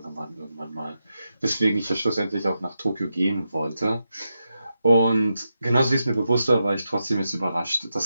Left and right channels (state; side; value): inverted; both; correlation -0.87